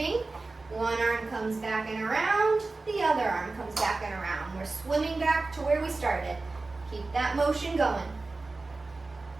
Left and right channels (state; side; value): quieter; left; 3.5 dB